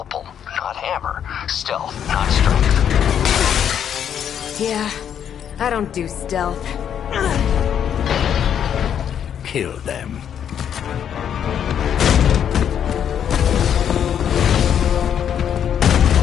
not hammer. Stealth, not strength. Yeah, I don't do stealth. Kill them.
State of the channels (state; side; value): quieter; right; 8.9 dB